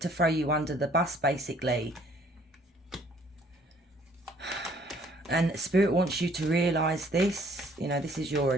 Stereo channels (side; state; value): both; normal; correlation 0.60